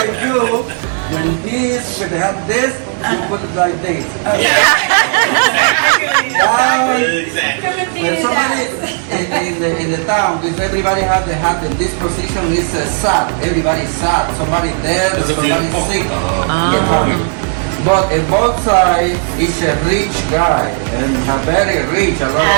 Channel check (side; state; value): left; silent; 55 dB below the other